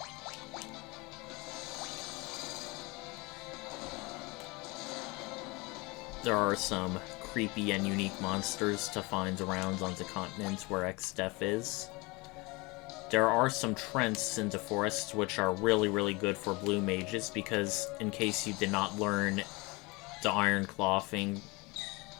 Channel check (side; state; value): right; quieter; 25.5 dB